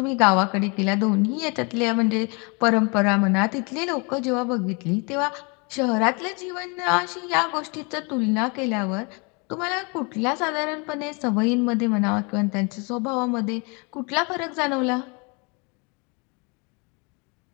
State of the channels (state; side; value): quieter; right; 31.6 dB